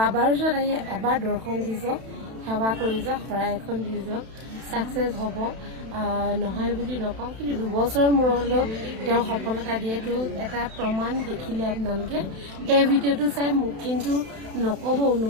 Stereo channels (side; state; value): left; late; 32 ms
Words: ওচৰত আহি এবাৰ দৰ্শন দি যাওক সেৱা কৰি যাওক শৰাই এখন দি যাওক ছাকচেছ হ'ব নহয় বুলি নকওঁ কিন্তু 2 বছৰ মূৰত হ'লেও তেওঁ সফলতা দিয়েতো এটা প্ৰমাণ দেখিলে আপোনালোকে এই ভিডিঅ'টো চাই মোক কিন্তু নক'ব